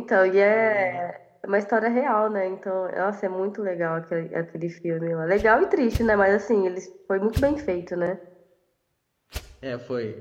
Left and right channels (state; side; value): identical; both; correlation 1.00